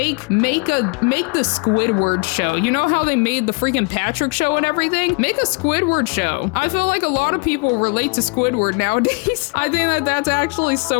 the Squidward show. You know how they made the freaking Patrick show and everything? Make a Squidward show. I feel like a lot of people relate to Squidward nowadays. I think that that's actually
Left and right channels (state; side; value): quieter; right; 31.6 dB